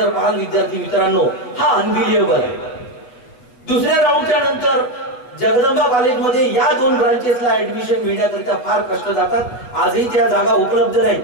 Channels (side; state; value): right; late; 8.0 ms